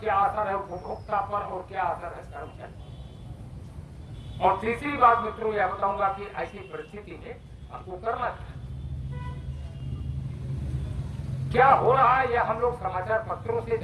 असर है उपभोक्ता पर और क्या असर है कर्मचारी। और तीसरी बात मित्रों यह बताऊंगा कि ऐसी परिस्थिति में हमको करना क्या हो रहा है, यह हम लोग समाचार पत्रों से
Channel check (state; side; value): identical; both; correlation 1.00